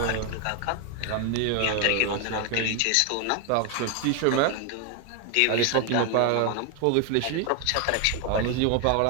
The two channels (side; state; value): both; different; correlation 0.01